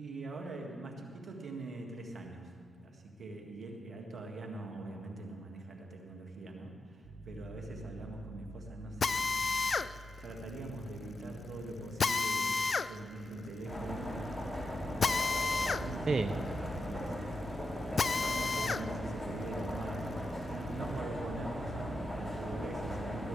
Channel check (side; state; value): both; normal; correlation 0.87